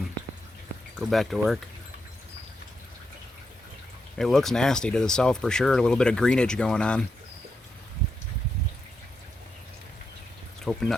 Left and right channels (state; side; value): normal; both; correlation 0.84